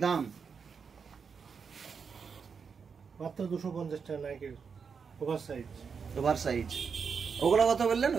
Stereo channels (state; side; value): quieter; left; 6.0 dB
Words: দাম, মাত্র 250 টাকা নাইকির ওভার সাইজ। ওভার সাইজ ওগুলো কত বললেন?